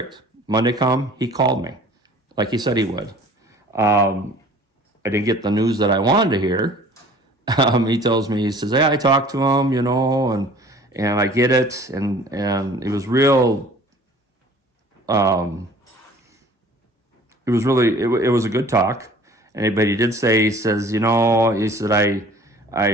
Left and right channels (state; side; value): normal; both; correlation 0.49